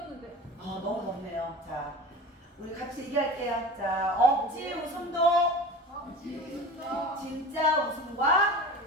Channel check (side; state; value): both; normal; correlation 0.34